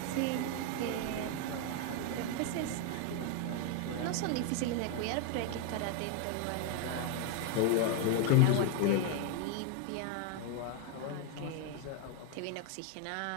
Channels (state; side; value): different; both; correlation 0.01